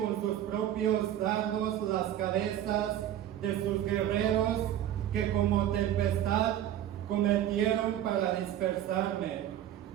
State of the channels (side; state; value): left; quieter; 11.5 dB